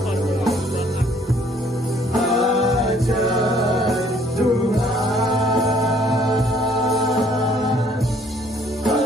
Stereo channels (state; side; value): normal; both; correlation 0.61